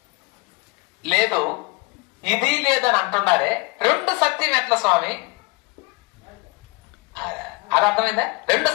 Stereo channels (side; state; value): right; quieter; 26.8 dB